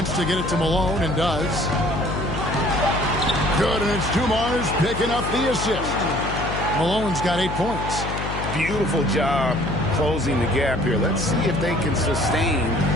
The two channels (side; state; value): left; noise; hum, 5 dB below the sound